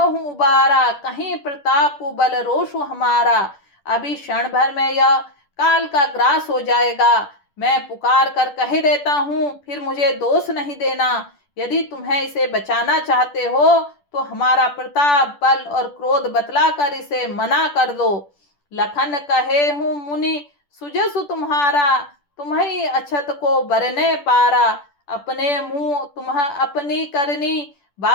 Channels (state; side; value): late; right; 10 ms